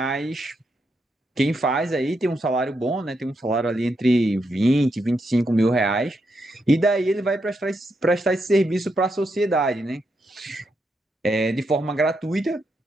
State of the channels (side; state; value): both; normal; correlation 0.82